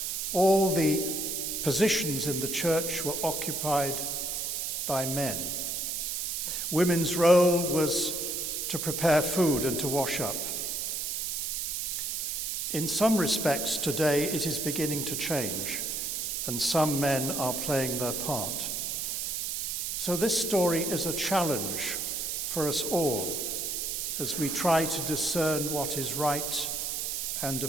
all the positions in the church were occupied by men. Women's role was to prepare food and to wash up. In some respects today it is beginning to change, and some men are playing their part. So this story is a challenge for us all as we try to discern what is right and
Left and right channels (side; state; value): right; noise; hiss, 2 dB below the sound